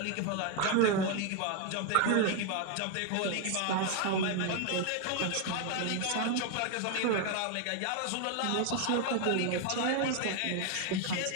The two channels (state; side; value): different; both; correlation 0.01